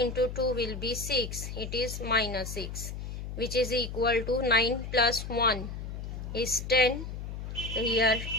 into 2 will be 6. It is minus 6, which is equal to 9 plus 1 is 10. So here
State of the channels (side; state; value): left; noise; hum, 7 dB below the sound